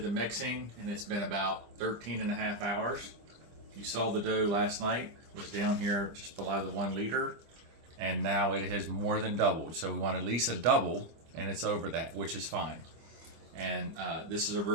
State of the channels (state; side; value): late; left; 25 ms